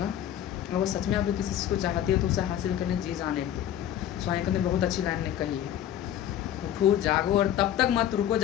अगर वो सच में आप किसी चीज़ को चाहते हो तो उसे हासिल करने जी जाने दो। स्वामी ने बहुत अच्छी लाइन ने कही है, उठो जागो और तब तक मत रुको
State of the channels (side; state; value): right; quieter; 11.0 dB